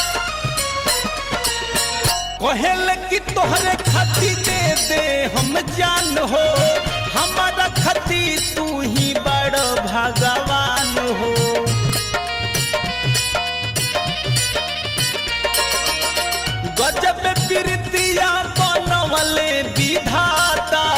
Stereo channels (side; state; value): both; identical; correlation 1.00